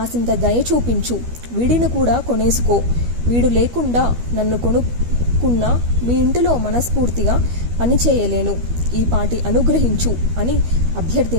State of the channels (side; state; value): left; late; 12 ms